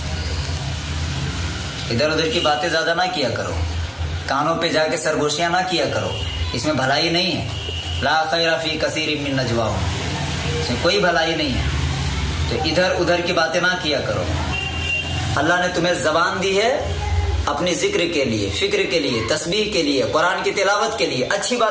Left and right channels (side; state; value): both; identical; correlation 1.00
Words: इधर उधर की बातें ज्यादा ना किया करो, कानों पे जाके सरगोशियां ना किया करो, इसमें भलाई नहीं है। ला खैरा फी कसीरिम मिन नजवाहुम, इसमें कोई भलाई नहीं है, तो इधर उधर की बातें ना किया करो। अल्लाह ने तुम्हें जबान दी है अपनी जिक्र के लिए, फिक्र के लिए, तस्बीह के लिए, कुरान की तिलावत के लिए, अच्छी